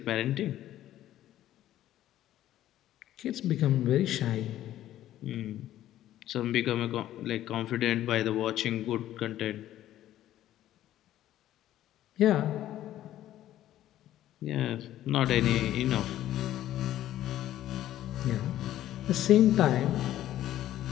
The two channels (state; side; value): quieter; right; 13.0 dB